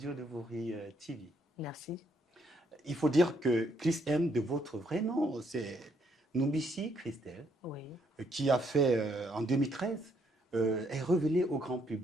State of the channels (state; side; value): normal; both; correlation 0.72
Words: de Vouri TV. Merci. Il faut dire que Chris M, de votre vrai nom, c'est Noubissi Christelle, Oui. Qui a fait en 2013, est révélé au grand